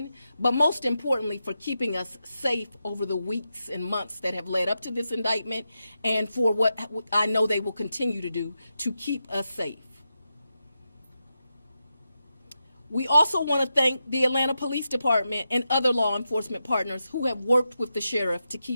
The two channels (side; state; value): both; inverted; correlation -0.88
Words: but most importantly for keeping us safe over the weeks and months that have led up to this indictment, and for what I know they will continue to do to keep us safe. We also want to thank the Atlanta Police Department and other law enforcement partners who have worked with the sheriff to